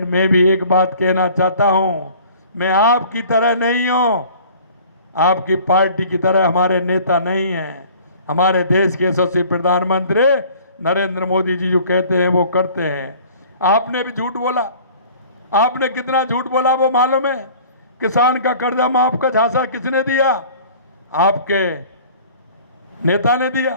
मैं भी एक बात कहना चाहता हूं, मैं आपकी तरह नहीं हूं, आपकी पार्टी की तरह हमारे नेता नहीं हैं। हमारे देश के यशस्वी प्रधानमंत्री नरेंद्र मोदी जी जो कहते हैं वो करते हैं। आपने भी झूठ बोला। आपने कितना झूठ बोला वो मालूम है? किसान का कर्जा माफ का झांसा किसने दिया? आपके नेता ने दिया।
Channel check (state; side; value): inverted; both; correlation -0.48